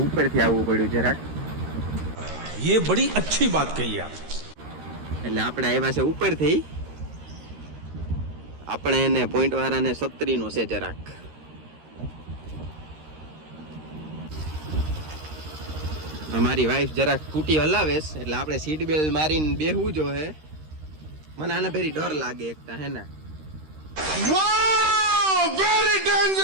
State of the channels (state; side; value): late; left; 13 ms